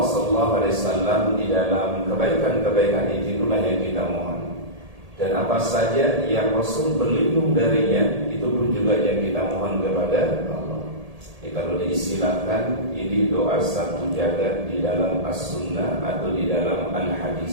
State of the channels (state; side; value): late; left; 1.8 ms